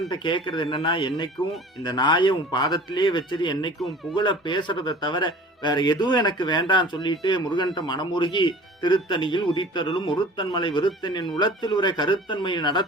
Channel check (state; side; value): normal; both; correlation 0.44